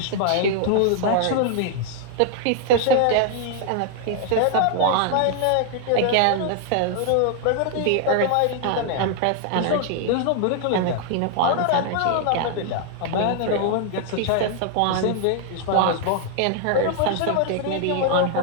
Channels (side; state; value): both; different; correlation 0.00